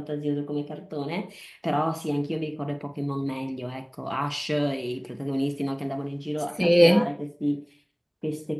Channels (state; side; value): identical; both; correlation 1.00